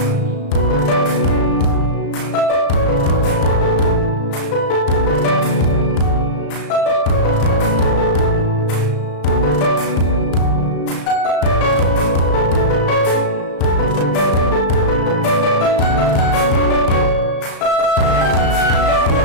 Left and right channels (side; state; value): right; late; 35 ms